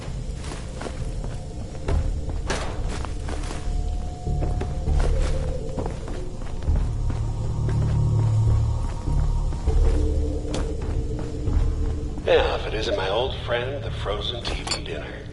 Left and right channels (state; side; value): identical; both; correlation 1.00